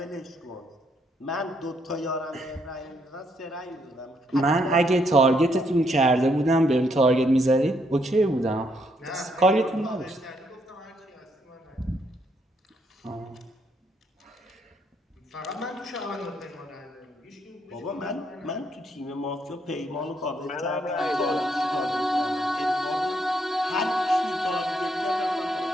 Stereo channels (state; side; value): normal; both; correlation 0.74